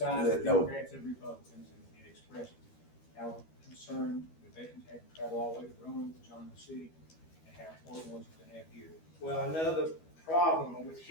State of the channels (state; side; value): late; right; 12 ms